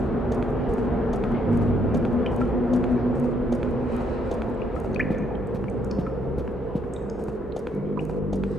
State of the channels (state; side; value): normal; both; correlation 0.72